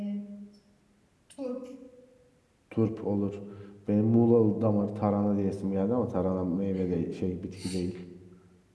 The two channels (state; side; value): identical; both; correlation 1.00